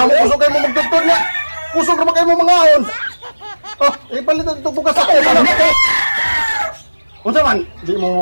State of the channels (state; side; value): inverted; both; correlation -1.00